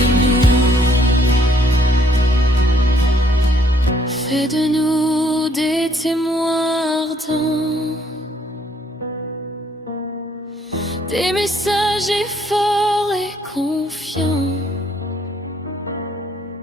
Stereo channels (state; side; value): normal; both; correlation 0.67